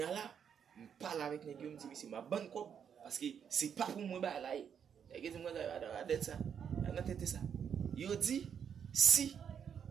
la, me parle avec nèg yo me dit c'est ma bonne cop parce que c'est pas pour moi ba la. Nèg yo di mo da det ça. Nan tête ça. Yo dit si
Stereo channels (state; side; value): quieter; left; 7.8 dB